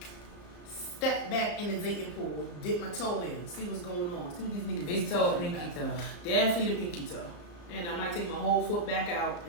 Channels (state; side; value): late; right; 34 ms